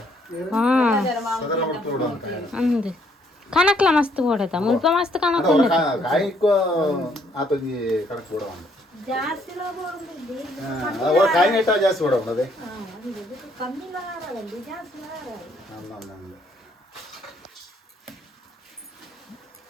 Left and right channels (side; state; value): both; normal; correlation 0.67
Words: ಸದರ ಮಾಡ್ತೋಡು ಅಂತ ಅಂದೆ ಕನಕ್ಲ ಮಸ್ತ್ ಓಡತ ಮುಲ್ಪ ಮಸ್ತ್ ಕನಕ್ ಕಾಯಿಕೋ ಆತೊಂಜಿ ಕಣಕ್ ಕೂಡ ಒಂದು ಕಾಯಿ ನೆಟ್ಟ ಜಾಸ್ತಿ ಓಡ ಅದೇ